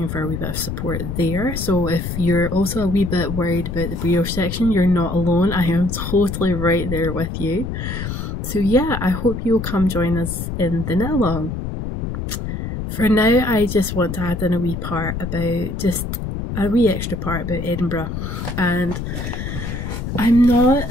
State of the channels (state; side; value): noise; left; rumble, 5 dB below the sound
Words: for a wee bit of support there. So if you're also a wee bit worried about the brioche section, you're not alone. I am totally right there with you. So yeah, I hope you'll come join us in the knit along. For now, I just want to add in a wee part about, just a wee extra part about Edinburgh. And I'm not